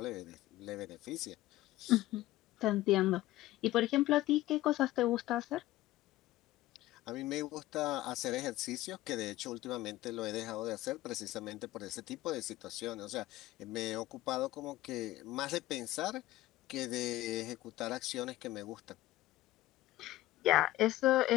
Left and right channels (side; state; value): right; quieter; 16.3 dB